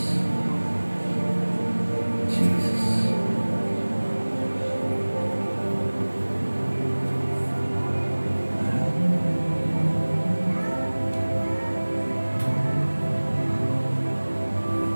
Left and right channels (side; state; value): both; inverted; correlation -1.00